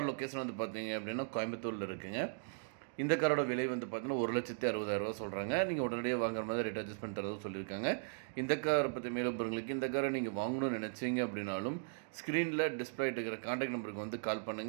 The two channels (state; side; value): silent; left; digital silence